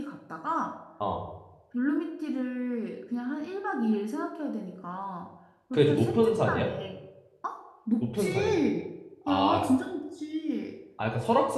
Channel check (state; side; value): identical; both; correlation 1.00